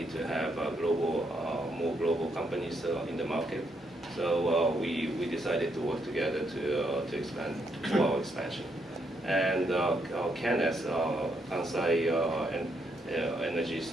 to have more global companies in the market. So we decided to work together to expand our expansion. And KNS, Kansai Energy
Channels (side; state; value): both; normal; correlation 0.76